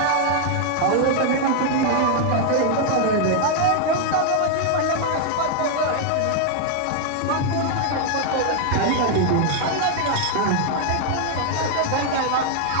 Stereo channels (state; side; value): different; both; correlation 0.00